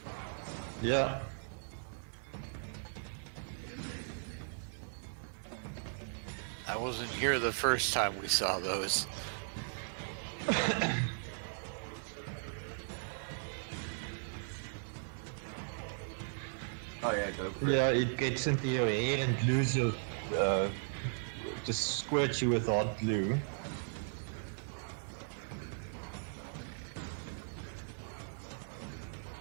Yeah. All right. Let me add a I turn wasn't for. here the first time we saw those. Oh, can you guys remind them what they did? Or should I? Because I'm okay with that. Oh yeah, go for it. Yeah, it gets into your hair and glues your, just squirts you with hot glue. Yeah. It has sort of the same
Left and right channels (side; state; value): left; silent; 53 dB below the other